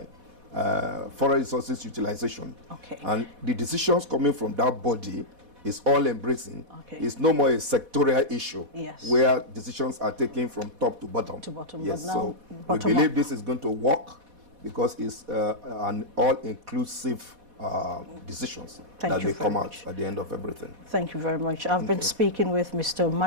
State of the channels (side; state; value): left; late; 4.1 ms